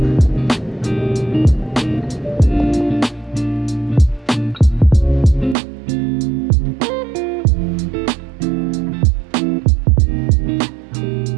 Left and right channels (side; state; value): left; drops out; at 5.6 s